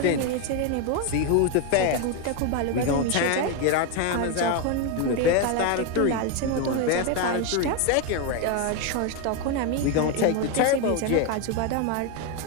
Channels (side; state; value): both; different; correlation 0.02